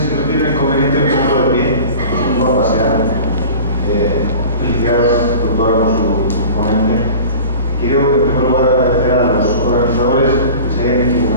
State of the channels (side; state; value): both; inverted; correlation -0.39